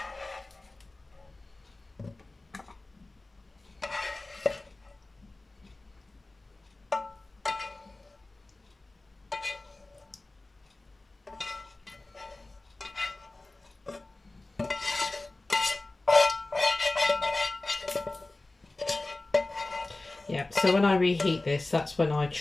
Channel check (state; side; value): quieter; right; 3.0 dB